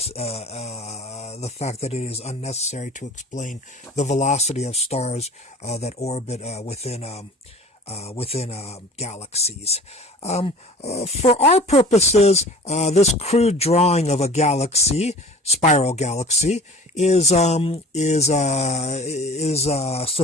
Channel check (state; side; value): normal; both; correlation 0.44